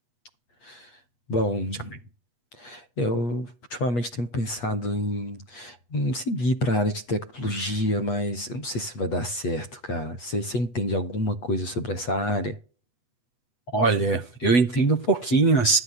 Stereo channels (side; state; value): right; late; 8.3 ms